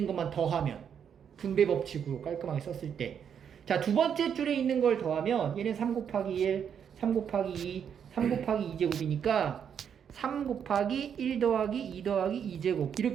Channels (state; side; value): quieter; left; 8.0 dB